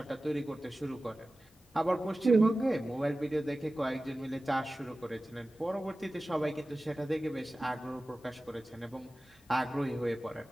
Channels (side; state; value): both; normal; correlation 0.96